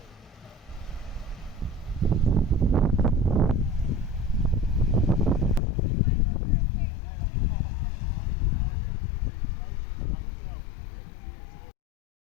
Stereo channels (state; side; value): drops out; right; at 5.6 s